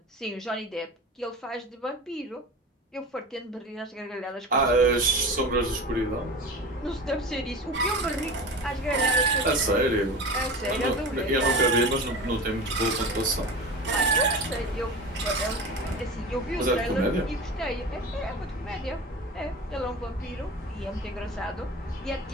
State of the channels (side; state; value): both; normal; correlation 0.32